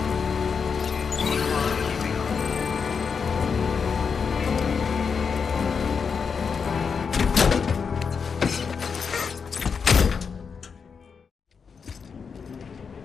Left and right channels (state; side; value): quieter; right; 5.9 dB